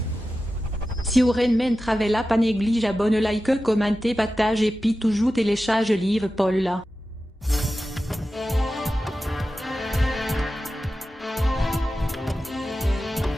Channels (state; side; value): normal; both; correlation 0.93